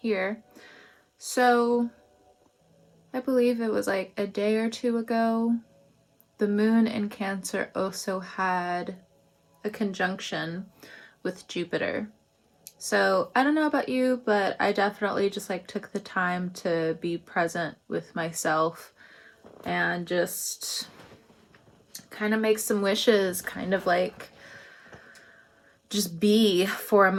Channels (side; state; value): both; identical; correlation 1.00